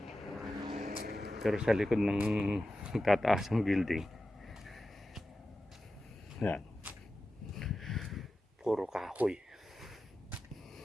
Pero sa likod ng tataas ang building, yan, puro kahoy.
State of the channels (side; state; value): both; normal; correlation 0.93